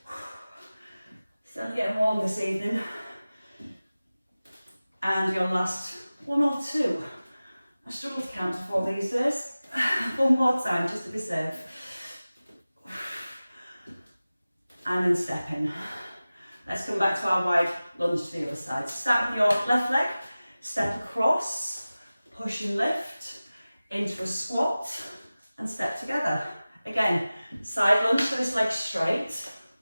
Still getting warm this evening. And your last 1 or 2. I struggle to count to 4 these days. 1 more time, just to be safe. And then step in. Let's come back to our wide lunge to the other side. Start with your left leg, step across, push and lift, into a squat, and step together. Again, side lunge, so this leg straight,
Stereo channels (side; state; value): both; inverted; correlation -0.97